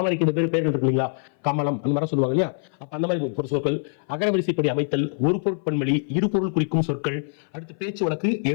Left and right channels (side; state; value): right; silent; 58 dB below the other